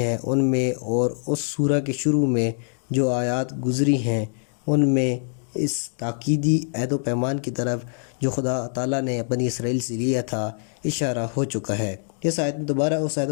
ان میں اور اس سورہ کے شروع میں جو آیات گزری ہیں ان میں اس تاکیدی عہد و پیمان کی طرف جو خدا تعالیٰ نے بنی اسرائیل سے لیا تھا اشارہ ہو چکا ہے۔ اس آیت میں دوبارہ اس عہد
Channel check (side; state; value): right; silent; digital silence